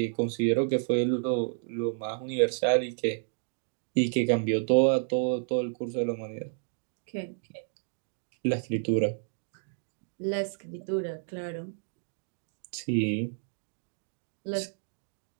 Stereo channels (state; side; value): silent; left; digital silence